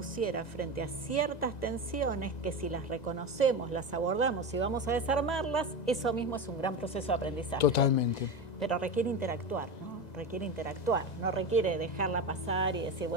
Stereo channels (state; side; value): late; right; 1.9 ms